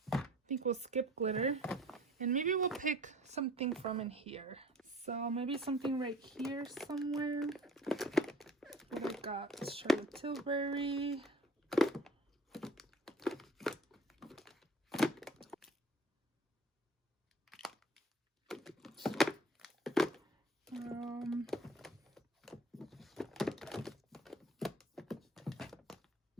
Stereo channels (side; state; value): both; normal; correlation 0.48